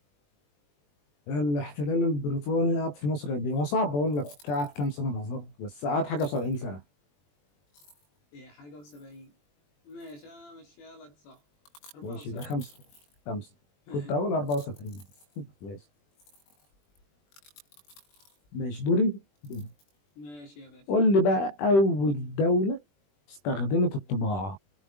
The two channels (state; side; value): late; right; 21 ms